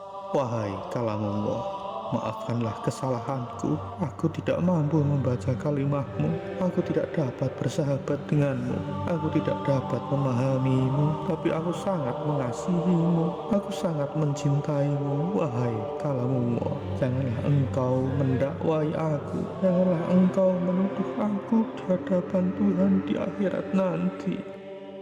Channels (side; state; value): both; identical; correlation 1.00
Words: Wahai kalamullah, maafkanlah kesalahanku. Aku tidak mampu membaca kalimahmu. Aku tidak dapat bersahabat denganmu. Aku tidak dapat memahamimu, tapi aku sangat mengasihimu. Aku sangat mencintaimu. Wahai kalamullah, janganlah engkau mendakwai aku. Janganlah engkau menuduh aku di hadapan Tuhan di akhirat nanti.